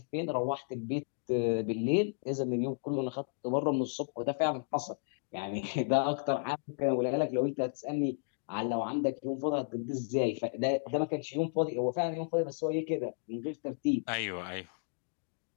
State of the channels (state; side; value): silent; right; digital silence